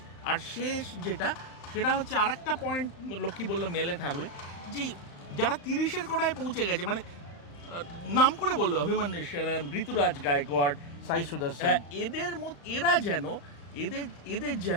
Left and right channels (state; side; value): late; right; 35 ms